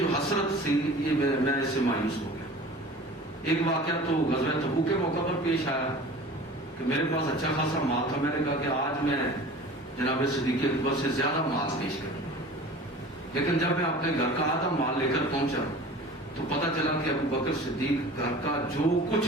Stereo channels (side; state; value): both; normal; correlation 0.41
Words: حسرت تھی، یہ میں اس سے مایوس ہو گیا۔ ایک واقعہ تو غزوہ تبوک کے موقع پر پیش آیا کہ میرے پاس اچھا خاصا مال تھا، میں نے کہا کہ آج میں جناب صدیق اکبر سے زیادہ مال پیش کروں گا، لیکن جب میں اپنے گھر کا آدھا مال لے کر پہنچا تو پتہ چلا کہ ابوبکر صدیق گھر کا جو کچھ